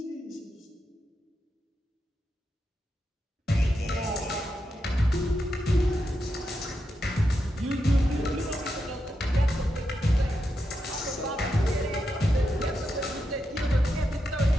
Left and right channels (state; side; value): normal; both; correlation 0.86